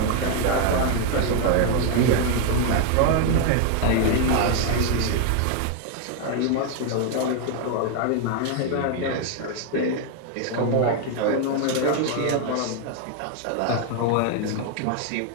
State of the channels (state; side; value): different; both; correlation 0.01